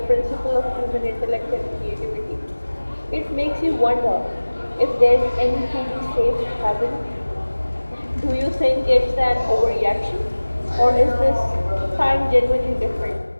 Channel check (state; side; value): inverted; both; correlation -1.00